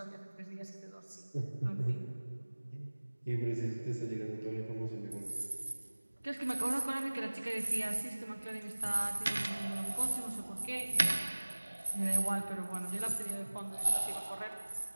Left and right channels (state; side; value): inverted; both; correlation -1.00